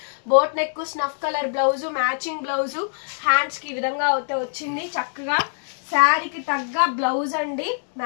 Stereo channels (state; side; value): silent; right; digital silence